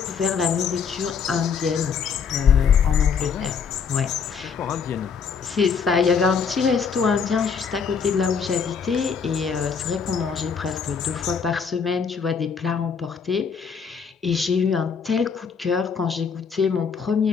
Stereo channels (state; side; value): quieter; right; 6.2 dB